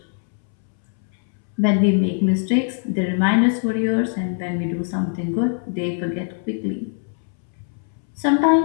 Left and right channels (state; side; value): silent; right; 64 dB below the other